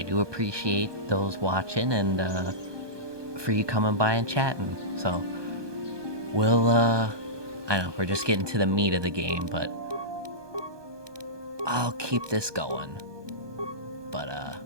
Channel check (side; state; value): left; late; 1.2 ms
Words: do appreciate those watching and for you coming by and chatting. So, we'll, I know, we're just getting to the meat of the game, but I'll keep this going. But,